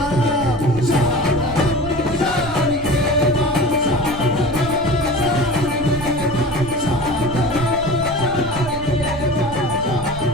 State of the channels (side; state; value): right; noise; rumble, 13 dB below the sound